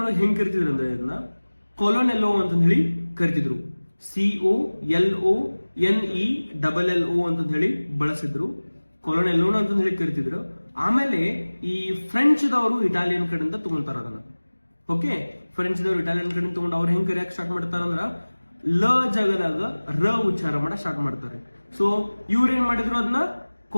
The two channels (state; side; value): inverted; both; correlation -1.00